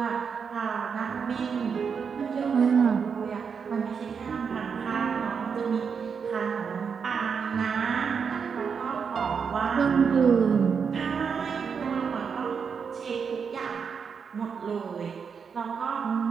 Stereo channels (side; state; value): left; quieter; 6.3 dB